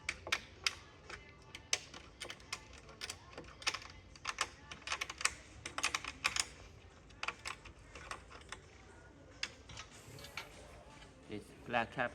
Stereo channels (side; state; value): both; identical; correlation 1.00